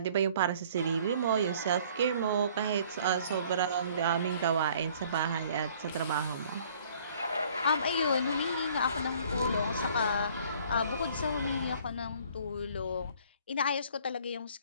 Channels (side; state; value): both; inverted; correlation -0.56